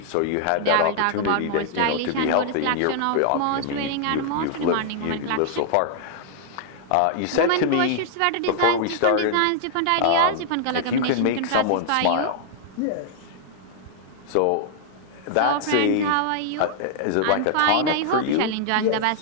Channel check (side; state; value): both; different; correlation -0.01